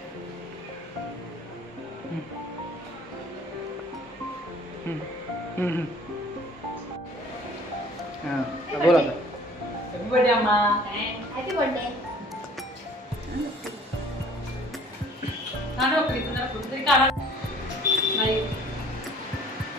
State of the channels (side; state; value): both; normal; correlation 0.53